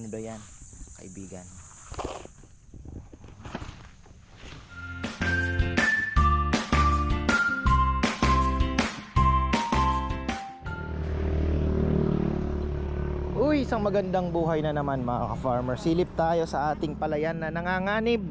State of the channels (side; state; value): both; identical; correlation 1.00